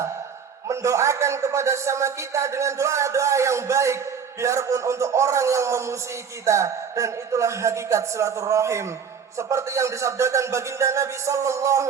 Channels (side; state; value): left; quieter; 6.8 dB